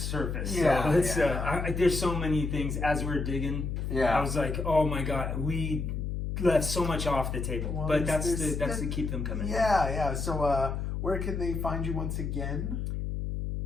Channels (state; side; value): noise; left; hum, 3 dB below the sound